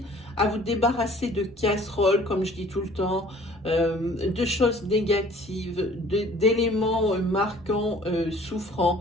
à vous débarrasser de casseroles, comme je dis tout le temps, de choses négatives, d'éléments marquants, souffrants.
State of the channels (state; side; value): normal; both; correlation 0.52